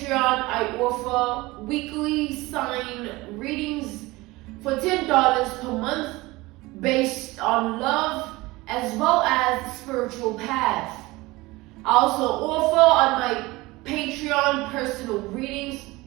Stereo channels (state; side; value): quieter; left; 21.1 dB